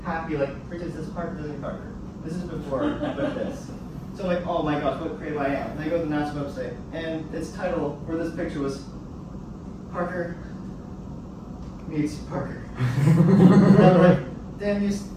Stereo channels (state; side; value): identical; both; correlation 1.00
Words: happy, like, for instance, this Parker doesn't Parker. This is before I put this. So I'm like, oh my gosh, what creative I am. And I go to the NASA website, and its title for this picture was Parker meets Parker. And I'm like, damn you